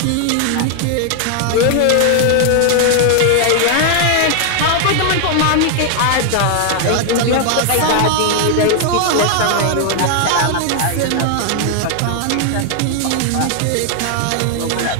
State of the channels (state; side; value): different; both; correlation 0.00